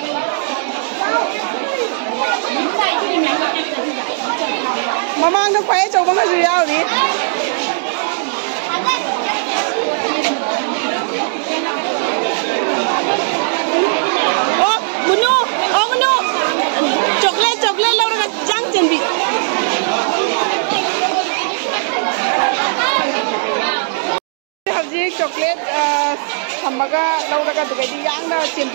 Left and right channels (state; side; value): silent; left; digital silence